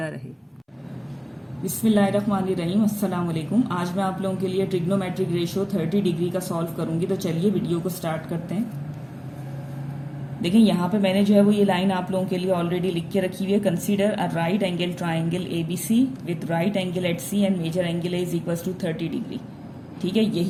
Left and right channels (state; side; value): identical; both; correlation 1.00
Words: रहे। बिस्मिल्लाहिर्रहमानिर्रहीम, अस्सलाम वालेकुम। आज मैं आप लोगों के लिए ट्रिग्नोमेट्रिक रेशियो 30 डिग्री का सॉल्व करूंगी। तो चलिए वीडियो को स्टार्ट करते हैं। देखिए यहाँ पे मैंने जो है वो ये लाइन आप लोगों के लिए ऑलरेडी लिख के रखी हुई है। Consider a right angle triangle ABC with right angle at C and major angle is equals to 30 degree. ठीक है,